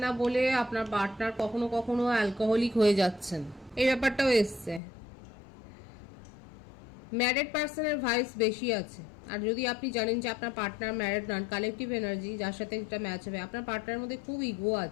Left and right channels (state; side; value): drops out; right; at 4.8 s